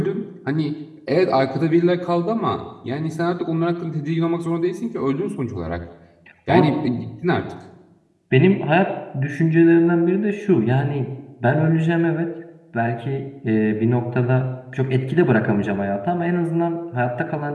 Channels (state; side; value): identical; both; correlation 1.00